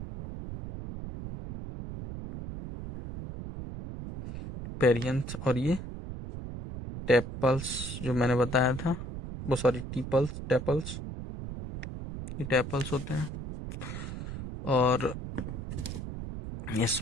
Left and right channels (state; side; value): noise; right; rumble, 8 dB below the sound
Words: पेरियंथ और ये टेपल्स जो मैंने बताया था, वो सॉरी टीपल्स, टेपल्स, ये टेपल्स होते हैं। और